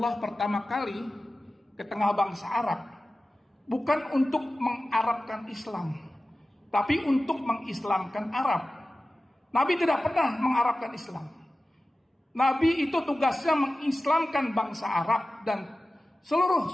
pertama kali ke tengah bangsa Arab, bukan untuk mengarabkan Islam, tapi untuk mengislamkan Arab. Nabi tidak pernah mengarabkan Islam. Nabi itu tugasnya mengislamkan bangsa Arab dan seluruh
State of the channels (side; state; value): both; normal; correlation 0.95